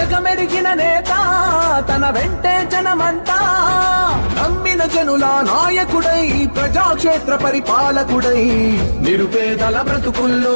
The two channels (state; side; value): inverted; both; correlation -1.00